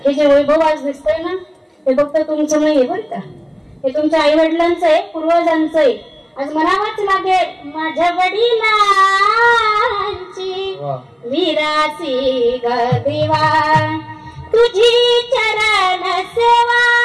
हे जे वैभव आज दिसतंय ना, हे फक्त तुमचं नाही बरं का, हे तुमच्या आई वडिलांचं आहे, पूर्वजांचं आहे. आज म्हणावंच लागेल, माझ्या वडिलांची विरासी ग देवा, तुझी चरण सेवा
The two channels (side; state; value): both; identical; correlation 1.00